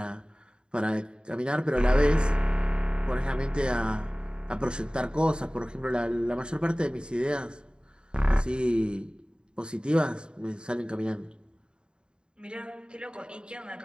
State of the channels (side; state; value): left; late; 0.050 ms